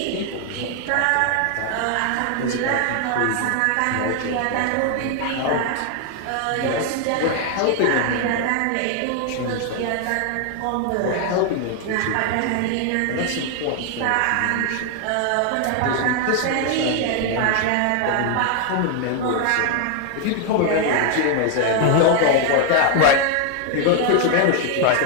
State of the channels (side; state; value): both; different; correlation 0.00